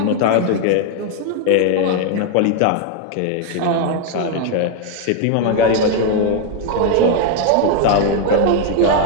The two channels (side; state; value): both; different; correlation 0.00